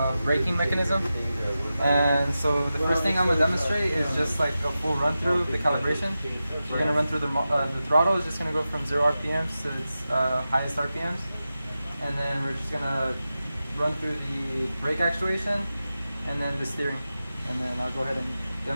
braking mechanism. And so the first thing I'm going to demonstrate is just like a full run through the calibration. We're going to run through the throttle is just going to go from 0 RPMs to its highest RPMs. And then we're just going to run through the brake actuation and then the steering. And then I'll go ahead and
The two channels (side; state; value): both; inverted; correlation -0.93